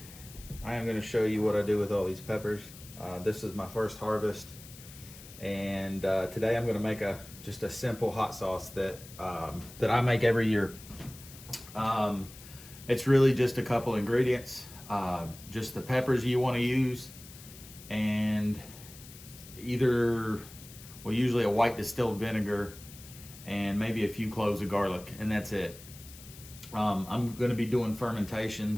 I am going to show you what I do with all these peppers. This is my first harvest, and today I'm going to make just a simple hot sauce that I make every year. It's really just a couple ingredients, just the peppers you want to use, and usually a white distilled vinegar, and maybe a few cloves of garlic, and that's it. I'm going to be doing fermentation,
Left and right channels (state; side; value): noise; left; hiss, 18 dB below the sound